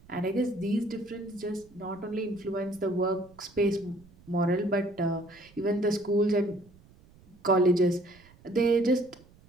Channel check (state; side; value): noise; right; rumble, 26 dB below the sound